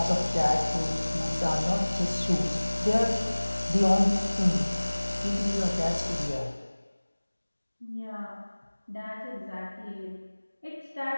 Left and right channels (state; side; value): inverted; both; correlation -1.00